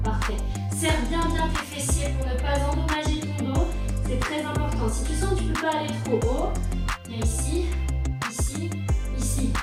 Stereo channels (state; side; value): identical; both; correlation 1.00